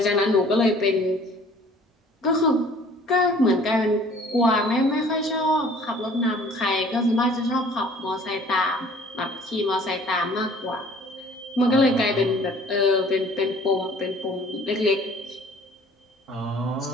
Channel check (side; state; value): both; normal; correlation 0.53